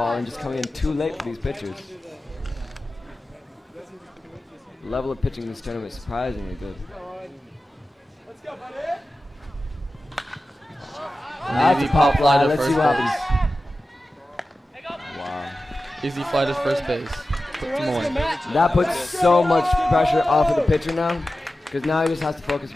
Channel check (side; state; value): both; normal; correlation 0.94